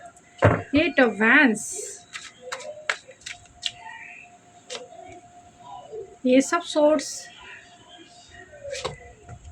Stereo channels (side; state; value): both; identical; correlation 1.00